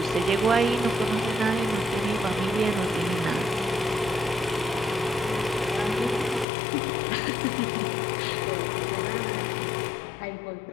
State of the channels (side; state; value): right; drops out; at 6.5 s